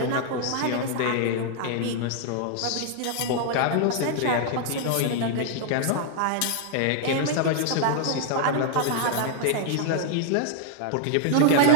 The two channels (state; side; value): different; both; correlation 0.00